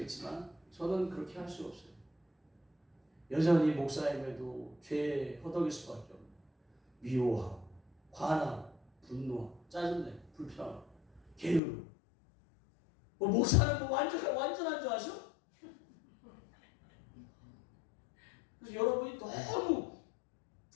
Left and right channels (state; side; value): drops out; right; at 11.6 s